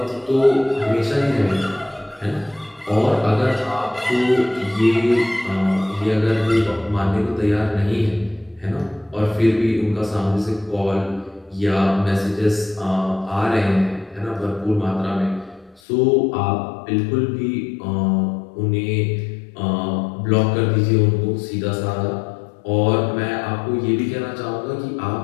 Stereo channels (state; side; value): drops out; right; at 15.8 s